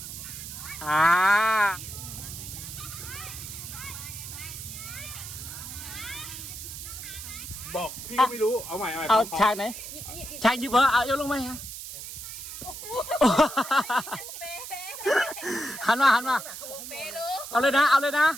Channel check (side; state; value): right; noise; hiss, 10 dB below the sound